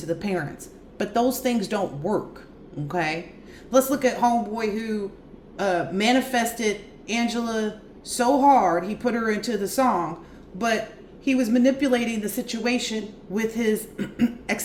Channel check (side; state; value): both; identical; correlation 1.00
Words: to the parents. But those things don't work, okay? Let's look at homeboy who manifested Angela so hard, he put her into the song, but he was manipulating the situation with his